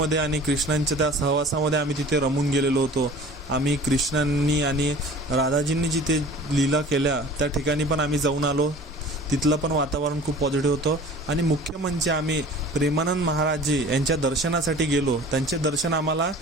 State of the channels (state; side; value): normal; both; correlation 0.44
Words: आणि कृष्णांच्या त्या सहवासामध्ये आम्ही तिथे रमून गेलेलो होतो. आम्ही कृष्णांनी आणि राधाजींनी जिथे लीला केल्या त्या ठिकाणी पण आम्ही जाऊन आलो. तिथलं पण वातावरण खूप पॉझिटिव्ह होतं. आणि मुख्य म्हणजे आम्ही प्रेमानंद महाराजजी यांच्या दर्शनासाठी गेलो. त्यांचे दर्शन आम्हाला,